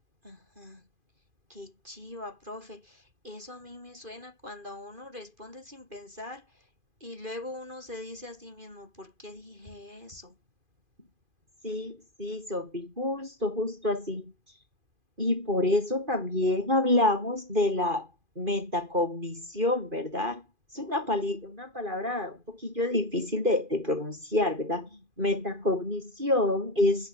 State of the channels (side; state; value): left; late; 2.5 ms